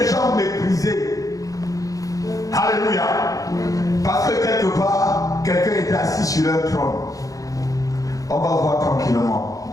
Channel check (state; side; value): late; right; 0.17 ms